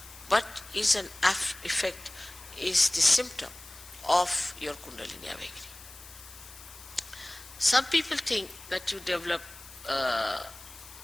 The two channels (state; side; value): noise; left; hiss, 18 dB below the sound